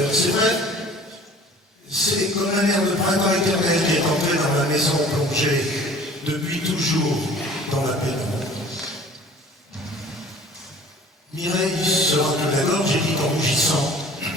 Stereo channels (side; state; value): both; normal; correlation 0.48